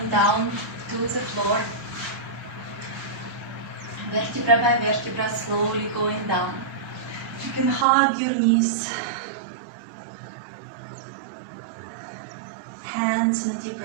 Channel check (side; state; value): left; drops out; at 7.9 s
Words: down to the floor. Vertebra by vertebra, slowly going down. You can hug your knees. Hands in a deep